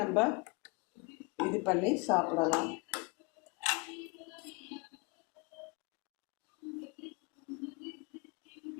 நம்ம இது பண்ணி சாப்பிடலாம்.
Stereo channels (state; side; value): quieter; right; 29.8 dB